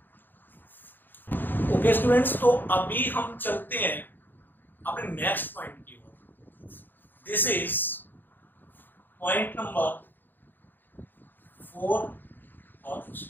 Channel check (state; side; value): late; right; 0.092 ms